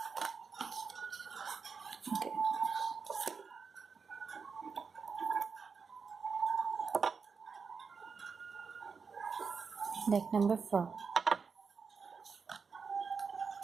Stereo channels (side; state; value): left; quieter; 5.5 dB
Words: okay. Deck number 4.